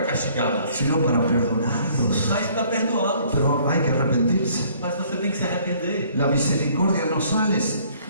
castigá-los, sino para perdonarlos. mas para perdoá-los. Pero hay que arrepentirse. Mas você tem que se arrepender. La misericordia no sale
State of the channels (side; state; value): both; inverted; correlation -0.59